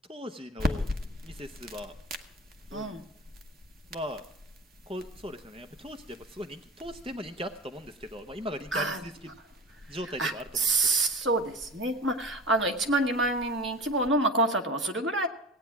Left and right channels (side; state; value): both; normal; correlation 0.33